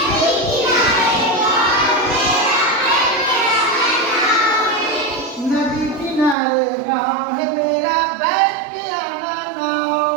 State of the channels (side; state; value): left; drops out; at 6.4 s